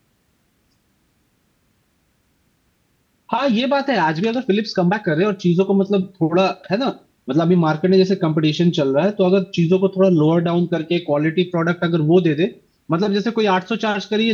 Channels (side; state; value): both; identical; correlation 1.00